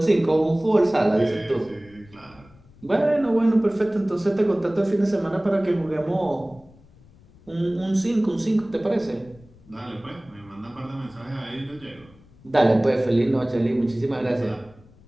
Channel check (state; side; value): noise; left; rumble, 26 dB below the sound